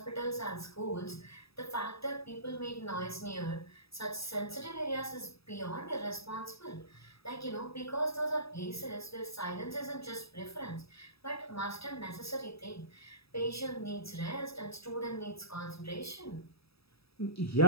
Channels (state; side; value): late; right; 0.77 ms